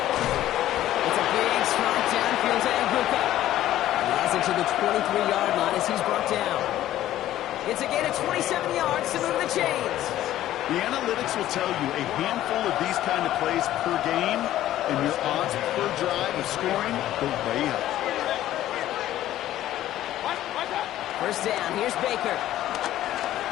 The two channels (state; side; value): quieter; right; 13.4 dB